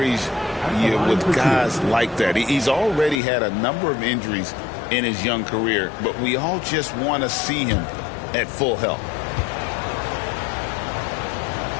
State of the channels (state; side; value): drops out; right; at 3.2 s